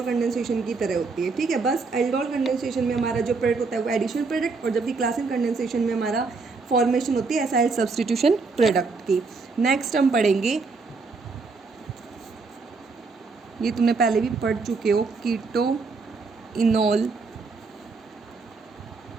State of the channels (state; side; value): quieter; left; 4.3 dB